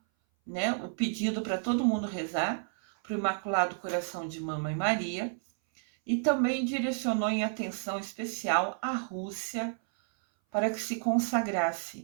né, o pedido para todo mundo rezar para o Imaculado Coração de Mamãe Maria, e também direcionou em atenção especial a Rússia para que se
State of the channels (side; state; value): left; silent; 57 dB below the other